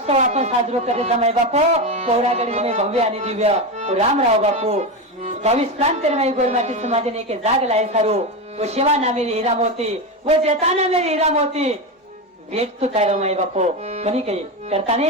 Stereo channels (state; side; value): normal; both; correlation 0.15